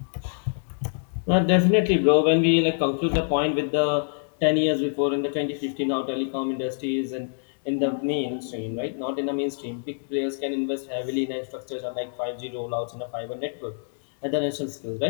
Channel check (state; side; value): silent; right; digital silence